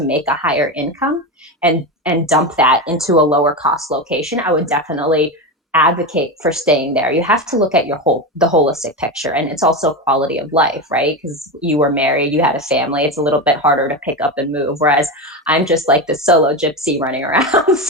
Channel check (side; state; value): both; normal; correlation 0.17